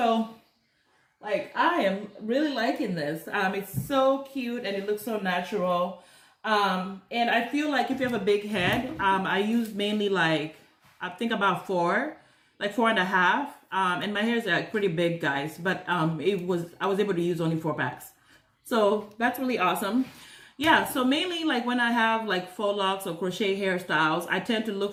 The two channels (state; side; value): identical; both; correlation 1.00